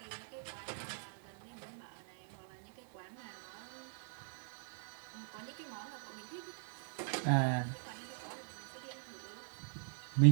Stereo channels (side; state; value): left; silent; digital silence